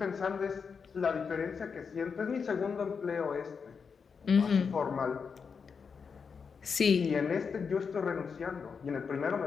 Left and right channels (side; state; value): right; quieter; 5.8 dB